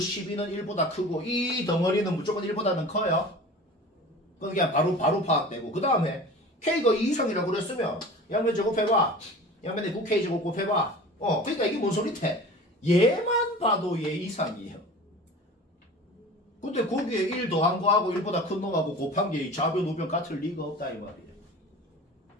1보다 크고 이 덩어리는 무조건 1보다는 커요. 그냥 바로 파악되고 그 다음에 K가 2 이상이라고 그랬으면 양면 제곱해봐. 양면에 9K 제곱 곱해봐. 그러니까 이게 뭔 소리태? 얘만 봐도 얘 이상이에요. 근데 거기에 1 더한 거하고 1보다 큰 놈하고 곱한 게 좌변 우변 같을 리가 없다 이 말이에요.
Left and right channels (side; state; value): both; normal; correlation 0.38